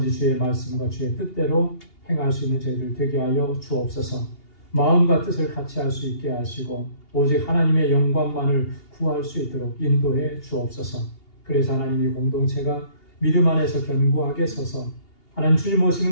주의 말씀과 주의 뜻대로 행할 수 있는 저희들 되게 하여 주옵소서. 마음과 뜻을 같이 할 수 있게 하시고 오직 하나님의 영광만을 구할 수 있도록 인도해 주옵소서. 그래서 하나님이 공동체가 믿음 안에서 견고하게 서서 하나님 주님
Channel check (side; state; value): right; late; 2.8 ms